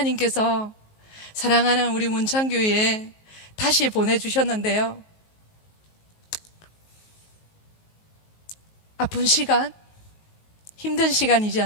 사랑하는 우리 문창교회에 다시 보내주셨는데요, 아픈 시간, 힘든 시간이지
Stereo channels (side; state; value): right; late; 19 ms